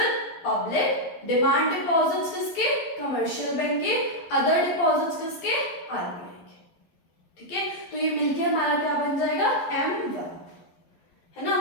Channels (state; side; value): late; right; 12 ms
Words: public, demand deposits किसके, कमर्शियल बैंक के, अदर डिपॉजिट्स किसके, आरबीआई के। ठीक है, तो ये मिलके हमारा क्या बन जाएगा, M1, है ना।